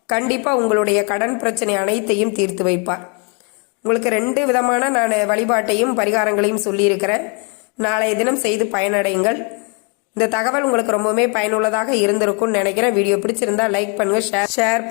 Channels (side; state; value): right; quieter; 35.4 dB